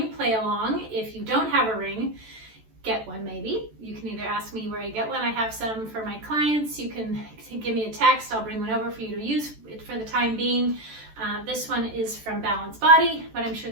play along. If you don't have a ring, get one maybe. You can either ask me where you get one. I have some for my clients. You can give me a text. I'll bring one over for you to use for the time being. This one is from Balance Body, but I'm sure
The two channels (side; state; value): left; late; 14 ms